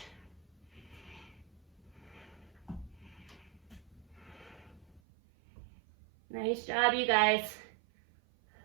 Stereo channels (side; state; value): left; drops out; at 5.0 s